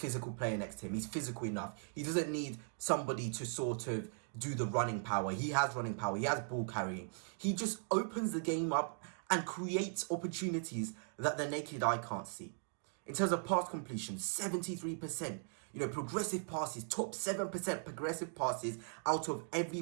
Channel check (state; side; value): silent; left; 52 dB below the other